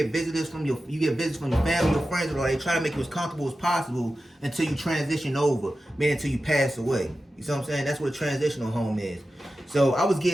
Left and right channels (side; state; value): both; normal; correlation 0.93